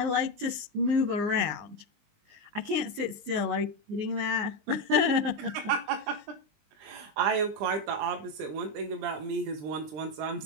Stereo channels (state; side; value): late; left; 20 ms